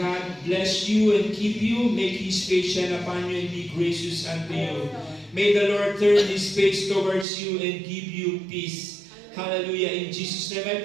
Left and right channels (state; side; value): drops out; left; at 7.2 s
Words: bless you and keep you. Make His face shine upon you and be gracious unto you. May the Lord turn His face towards you and give you peace. Hallelujah. In Jesus' name I